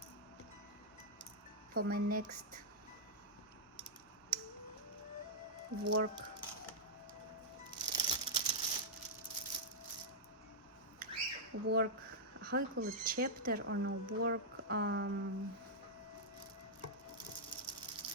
for my next work. How you call it, chapter or no, work,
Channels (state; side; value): normal; both; correlation -0.07